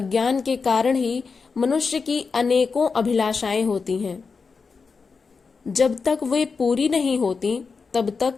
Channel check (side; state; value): right; quieter; 4.9 dB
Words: के कारण ही मनुष्य की अनेकों अभिलाषाएं होती हैं। जब तक वे पूरी नहीं होती, तब